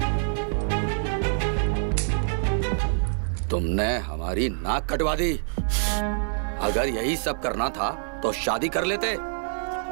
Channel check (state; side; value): silent; left; digital silence